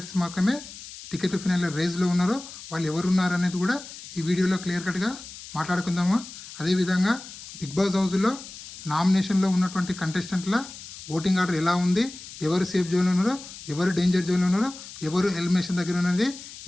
మాత్రమే టికెట్ ఫినాల్ రేస్లో ఉన్నారు. వాళ్ళు ఎవరు ఉన్నారు అనేది కూడా ఈ వీడియోలో క్లియర్ కట్గా మాట్లాడుకుందాము. అదేవిధంగా బిగ్ బాస్ హౌస్లో నామినేషన్లో ఉన్నటువంటి కంటెస్టెంట్ల ఓటింగ్ ఆర్డర్ ఎలా ఉంది, ఎవరు సేఫ్ జోన్లో ఉన్నారో, ఎవరు డేంజర్ జోన్లో ఉన్నారో, ఎవరు ఎలిమినేషన్ దగ్గర ఉన్నది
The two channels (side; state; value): left; noise; hiss, 14 dB below the sound